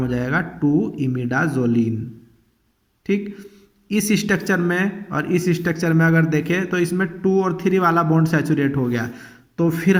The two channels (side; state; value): both; identical; correlation 1.00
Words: हो जाएगा 2 इमिडाजोलिन। ठीक, इस स्ट्रक्चर में और इस स्ट्रक्चर में अगर देखें तो इसमें 2 और 3 वाला बॉन्ड सैचुरेट हो गया, तो फिर